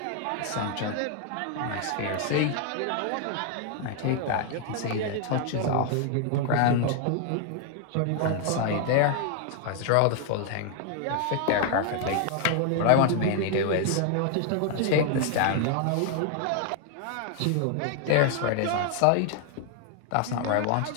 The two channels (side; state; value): both; different; correlation 0.00